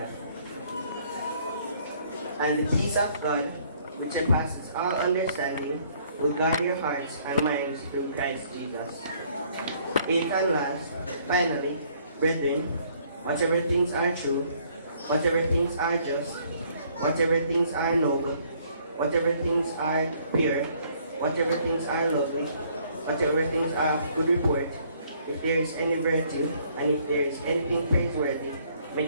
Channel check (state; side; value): inverted; both; correlation -0.63